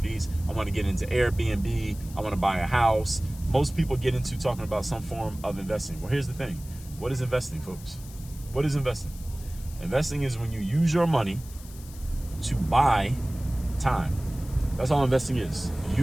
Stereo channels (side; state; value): left; noise; hiss, 19 dB below the sound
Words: I want to get into Airbnb. I want to buy a house. Most people get into talking about some form of investing. Well, here's the thing. What is investing, folks? What is investing? Investing is when you use your money to buy time. That's all investing is.